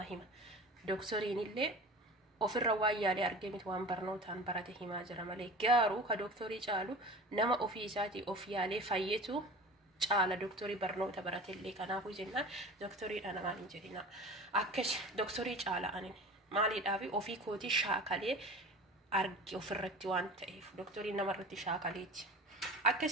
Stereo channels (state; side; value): normal; both; correlation 0.37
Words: hima. Doktoriin illee ofirra waan yaalee argee miti waan barnootaan barate himaa jira malee garuu ka doktorii caalu nama ofii isaatii of yaalee fayyetu caala doktorii barnoota barate illee. Kanaafuu jennaan doktoriidha namaan hin jedhina. Akkas doktorii caala anin maaliidhaaf ofii kootii shaakalee arge ofirratti waan ta'eef doktoriin namarratti shaakaleeti.